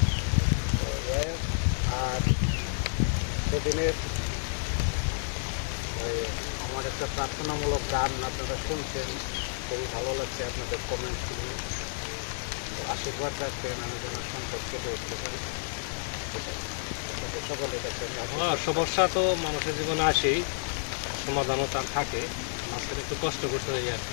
আর সেদিনের আমার একটা প্রার্থনামূলক গান আপনারা শুনছেন, খুবই ভালো লাগছে আপনাদের কমেন্ট শুনে। আশীর্বাদ রাখবেন আমি যেন সংকট কেটে উঠতে পারি। সকলে দেখবেন সমস্যা তো মানুষের জীবনে আসেই, সমাধানও তার থাকে, মাঝখানে একটু কষ্ট করতে হয় আর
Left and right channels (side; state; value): right; silent; digital silence